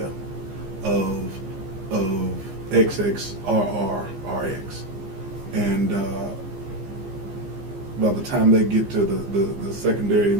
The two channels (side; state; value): left; late; 15 ms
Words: of XXRR, RX. And by the time they get to the secondary